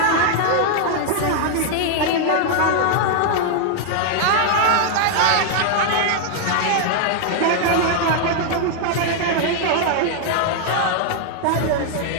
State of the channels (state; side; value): different; both; correlation 0.00